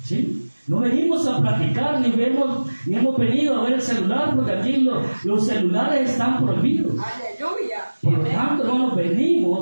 ¿Sí? No venimos a platicar, ni hemos venido a ver el celular, porque aquí los celulares están prohibidos. Aleluya. Por lo tanto, hermanos,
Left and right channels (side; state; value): both; inverted; correlation -1.00